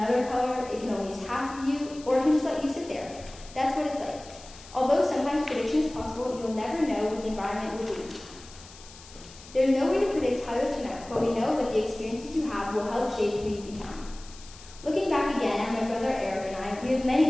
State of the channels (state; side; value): noise; left; hiss, 19 dB below the sound